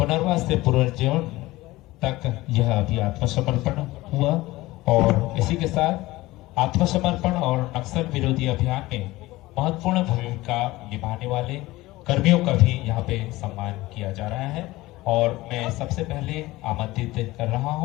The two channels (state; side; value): quieter; right; 18.9 dB